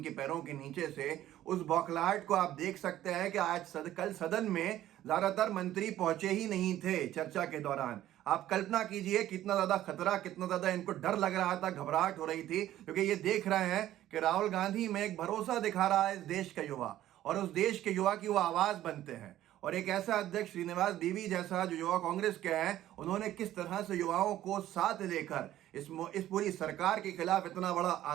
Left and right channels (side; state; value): left; quieter; 13.3 dB